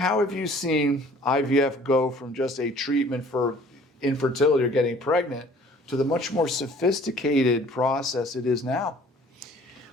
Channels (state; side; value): normal; both; correlation 0.53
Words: have you seen IVF go from just a treatment for infertility or getting pregnant to the much more sophisticated process it is now?